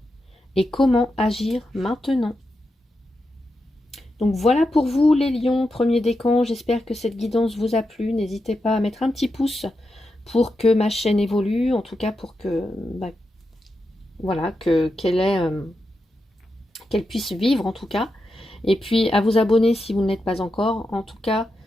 et comment agir maintenant. Donc voilà pour vous les lions, premier décan. J'espère que cette guidance vous a plu. N'hésitez pas à mettre un petit pouce pour que ma chaîne évolue, en tout cas pour que voilà, qu'elle puisse vivre en tout cas. Et puis à vous abonner si vous ne l'êtes pas encore. En tout cas,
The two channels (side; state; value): both; normal; correlation 0.87